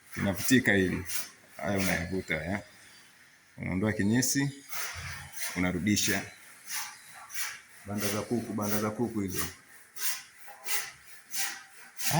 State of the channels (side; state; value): both; identical; correlation 1.00